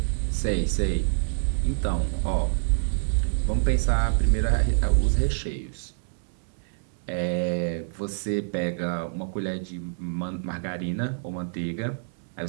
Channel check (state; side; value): silent; left; digital silence